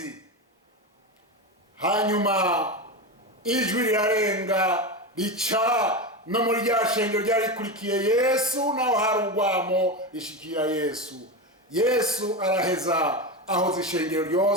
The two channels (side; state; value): both; normal; correlation 0.19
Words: Hanyuma ijwi rirarenga rica no muri rya shengero ryari rikurikiye Yesu, naho hari urwamo rishikira Yesu. Yesu araheza ahoza ishengero